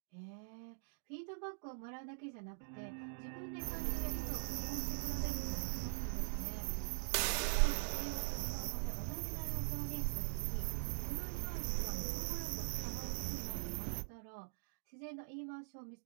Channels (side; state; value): left; silent; digital silence